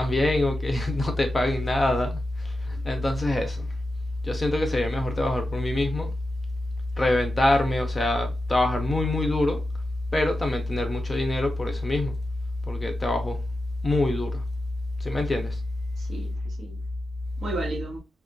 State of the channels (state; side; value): normal; both; correlation 0.91